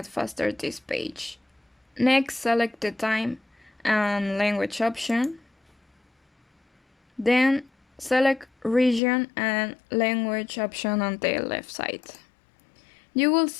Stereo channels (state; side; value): drops out; right; at 9.0 s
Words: faster this page. Next, select the time and language option. Then select region and language option on the left side. You will